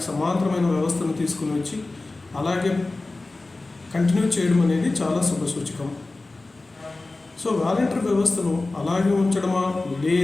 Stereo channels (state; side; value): quieter; right; 3.2 dB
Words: సమాంతరమైన వ్యవస్థను తీసుకుని వచ్చి అలాగే కంటిన్యూ చేయడం అనేది చాలా శుభసూచకం. సో వాలంటీర్ వ్యవస్థను అలాగే ఉంచడమా